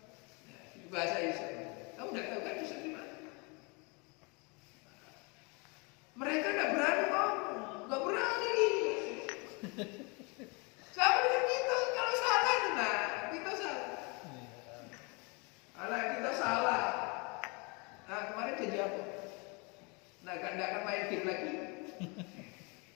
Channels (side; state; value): right; quieter; 30.5 dB